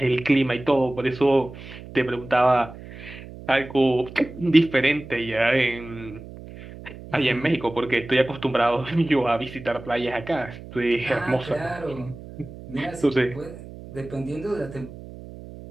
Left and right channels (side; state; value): right; noise; hum, 15 dB below the sound